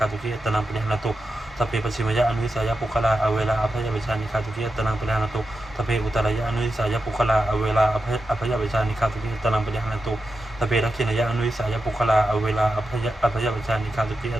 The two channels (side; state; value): both; normal; correlation 0.89